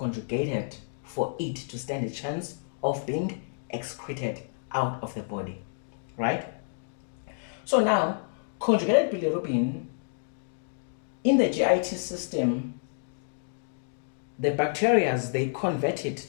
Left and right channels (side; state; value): right; silent; digital silence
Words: for it to stand a chance of being excreted out of the body, right? So now, conjugated bilirubin in the GIT system, the bacteria, they convert it,